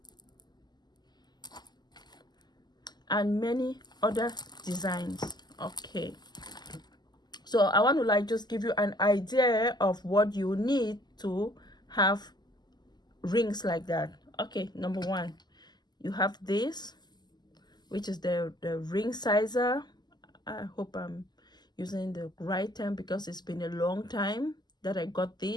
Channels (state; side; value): late; right; 0.21 ms